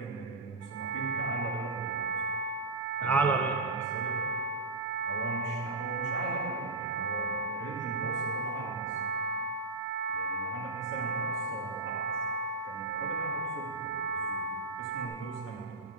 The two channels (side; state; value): left; quieter; 3.3 dB